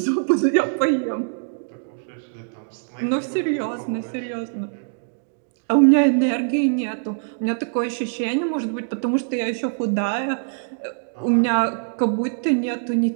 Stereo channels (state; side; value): silent; left; digital silence